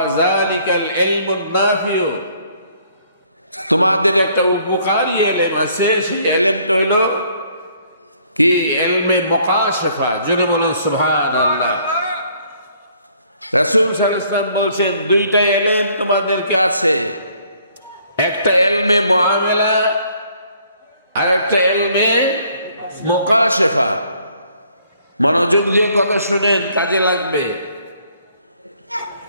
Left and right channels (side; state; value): both; inverted; correlation -0.63